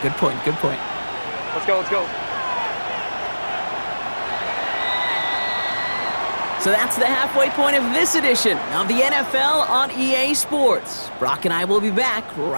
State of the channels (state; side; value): inverted; both; correlation -1.00